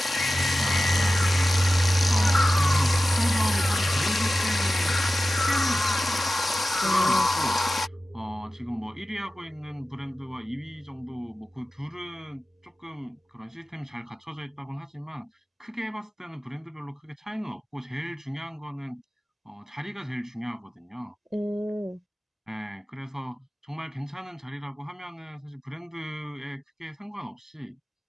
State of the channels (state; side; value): normal; both; correlation 0.95